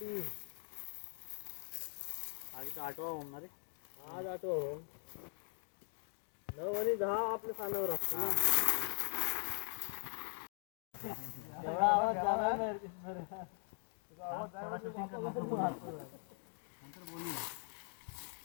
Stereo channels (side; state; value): right; silent; 50 dB below the other